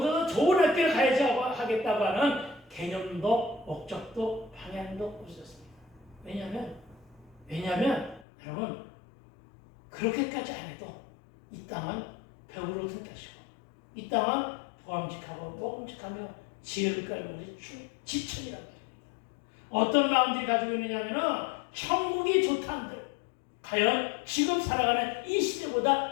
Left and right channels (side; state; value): right; drops out; at 8.2 s